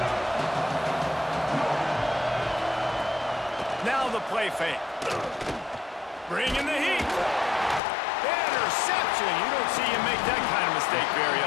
Now the play fake. Bringing the heat. Interception. You don't see him make that kind of mistake very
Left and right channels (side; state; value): right; drops out; at 7.8 s